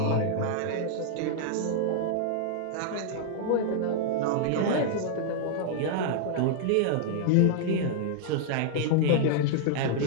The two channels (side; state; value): both; different; correlation -0.01